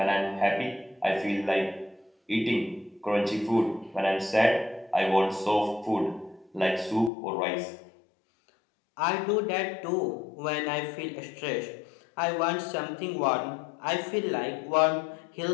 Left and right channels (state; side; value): drops out; right; at 7.1 s